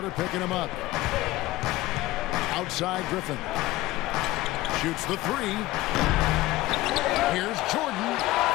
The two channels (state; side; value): quieter; right; 17.6 dB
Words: picking him up. Outside Griffin. Shoots the 3. Here's Jordan.